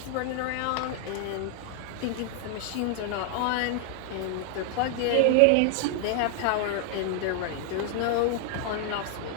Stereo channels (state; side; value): different; both; correlation 0.00